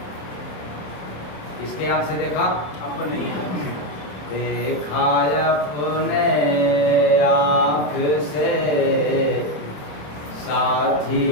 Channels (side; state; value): right; late; 27 ms